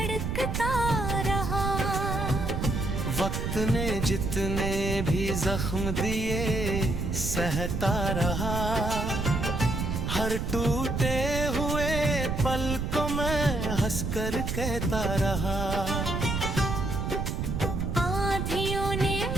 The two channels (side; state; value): right; noise; rumble, 2 dB below the sound